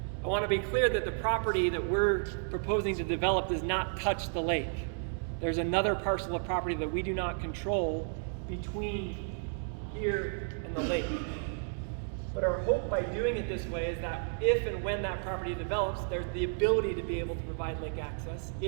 I want to be clear that the property that we're proposing to develop does not touch the lake. There's another parcel of property that we do not control between here and the lake. But our hope by doing it this way is that if and when that property develops, there's the ability to be able to provide lake access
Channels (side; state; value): left; silent; 56 dB below the other